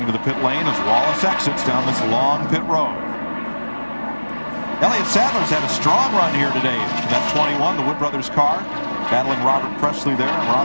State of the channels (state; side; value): inverted; both; correlation -1.00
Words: to the pit lane as Wallace exits down this long pit road. Elliott Sadler's had a strong run here today. That 21, the Wood Brothers car, battling Robert Presley there and